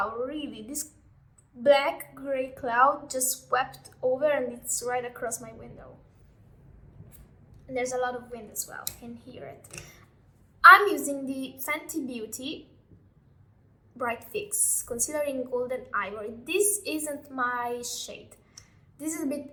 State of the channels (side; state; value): both; identical; correlation 1.00